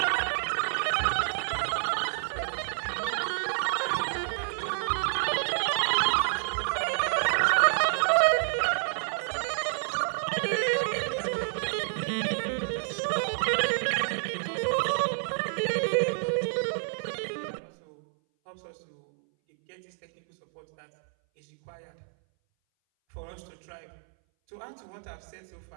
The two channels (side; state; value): left; silent; 59 dB below the other